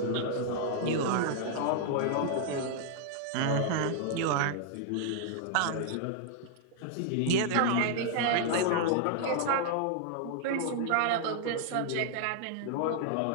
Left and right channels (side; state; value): both; different; correlation -0.01